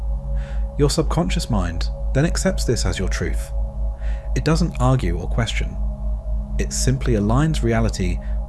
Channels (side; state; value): both; identical; correlation 1.00